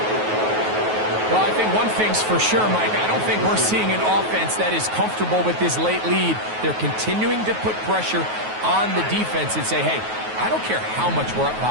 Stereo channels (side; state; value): left; late; 9.3 ms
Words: Well, I think one thing's for sure, Mike. I don't think we're seeing an offense that is comfortable with this late lead. They're continuing to put pressure on the defense and say, hey, I don't care how much we're up